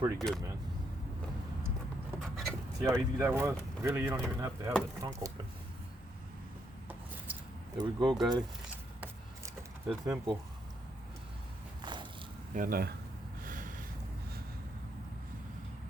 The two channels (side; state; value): both; normal; correlation 0.76